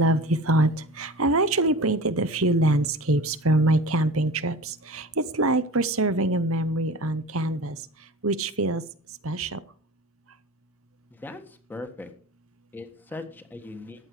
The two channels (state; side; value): normal; both; correlation 0.37